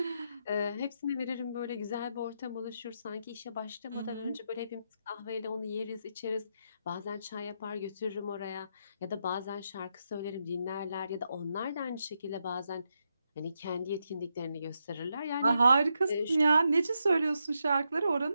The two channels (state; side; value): inverted; both; correlation -0.83